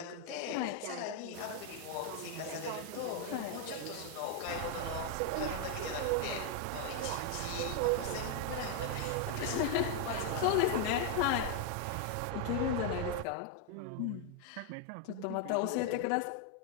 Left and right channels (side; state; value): both; different; correlation 0.00